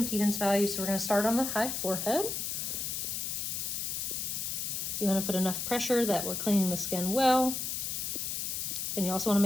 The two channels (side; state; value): left; noise; hiss, 2 dB below the sound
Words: value. So we're going to start on the high forehead. You want to put enough pressure that we're cleaning the skin well. And you also want to